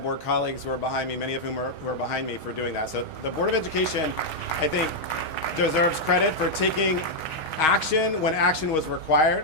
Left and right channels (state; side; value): late; right; 6.3 ms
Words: colleagues who are behind me, many of whom who are behind me, for doing that. So the Board of Education, I think, deserves credit for taking action when action was required.